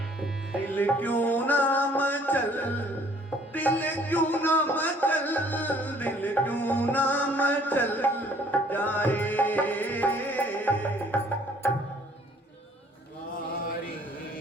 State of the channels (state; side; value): normal; both; correlation 0.58